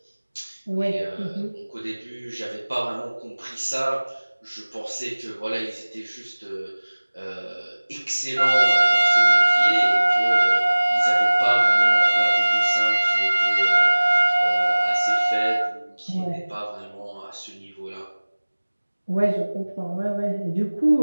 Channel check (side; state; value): both; inverted; correlation -1.00